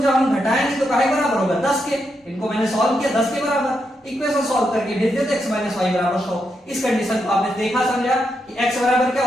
हम घटाएंगे तो काहे बराबर होगा, 10 के। इनको मैंने सॉल्व किया 10 के बराबर, इक्वेशन सॉल्व करके भेज देते x - y बराबर 100। इस कंडीशन को आपने देखा समझा कि x बराबर क्या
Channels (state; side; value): normal; both; correlation 0.82